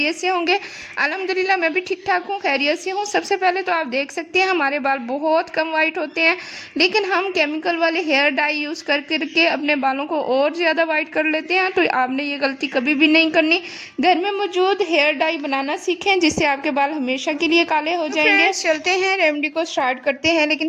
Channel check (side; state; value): both; identical; correlation 1.00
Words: से होंगे। अल्हम्दुलिल्लाह मैं भी ठीक ठाक हूँ, खैरियत से हूँ। सबसे पहले तो आप देख सकते हैं हमारे बाल बहुत कम वाइट होते हैं, लेकिन हम केमिकल वाले हेयर डाई यूज़ कर करके अपने बालों को और ज़्यादा वाइट कर लेते हैं। तो आपने ये गलती कभी भी नहीं करनी। घर में मौजूद हेयर डाई बनाना सीखें, जिससे आपके बाल हमेशा के लिए काले हो जाएंगे। चलते हैं रेमेडी को स्टार्ट करते हैं, लेकिन